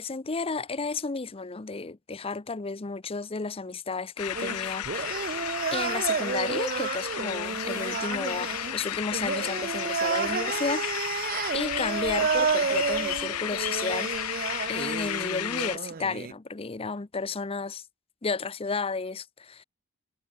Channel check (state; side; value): normal; both; correlation -0.04